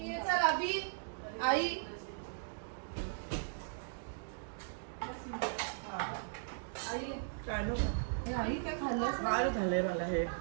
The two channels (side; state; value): left; silent; digital silence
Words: चल अभि आई आई काय काय खाल्लं फार झालंय मला हे